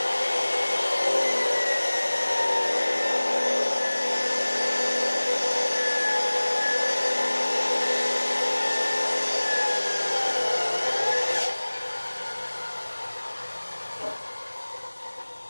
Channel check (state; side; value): inverted; both; correlation -1.00